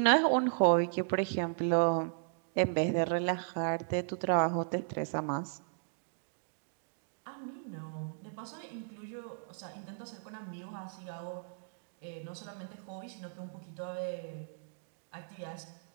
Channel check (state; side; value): silent; left; digital silence